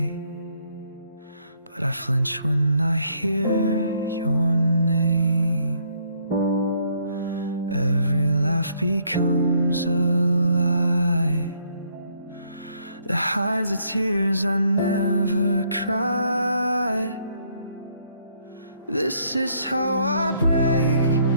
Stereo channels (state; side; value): inverted; both; correlation -0.69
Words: but I flinch when I hear your name. Every laugh becomes a lie that hides the tears I never cried. This is how I break,